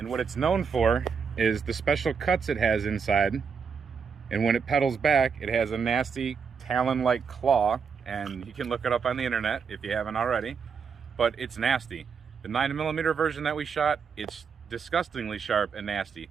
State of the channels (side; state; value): left; quieter; 6.1 dB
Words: what it's known for is the special cuts it has inside, and when it pedals back, it has a nasty talon-like claw, and you can look it up on the internet if you haven't already, but it's nasty. The 9mm version that we shot, it's disgustingly sharp and nasty.